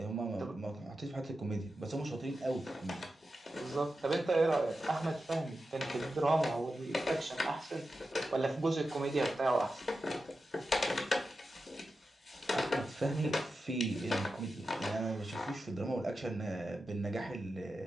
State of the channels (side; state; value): both; normal; correlation 0.91